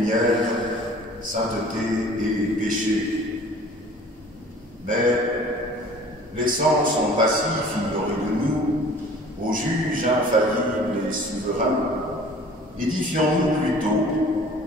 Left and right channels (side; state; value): both; normal; correlation 0.48